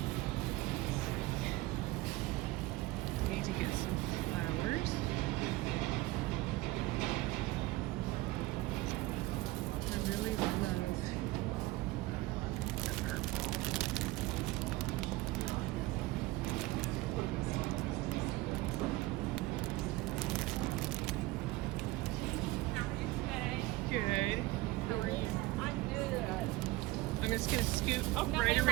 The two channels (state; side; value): quieter; left; 19.2 dB